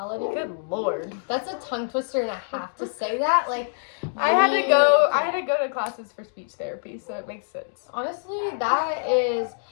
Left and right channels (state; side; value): silent; right; digital silence